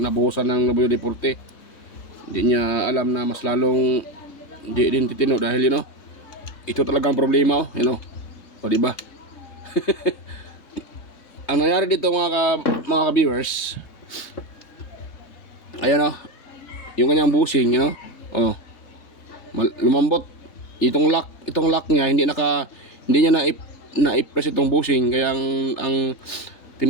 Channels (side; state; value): right; late; 3.7 ms